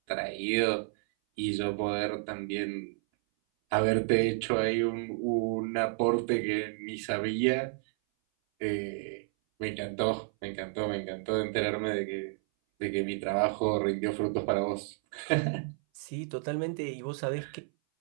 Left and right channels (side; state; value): left; silent; 57 dB below the other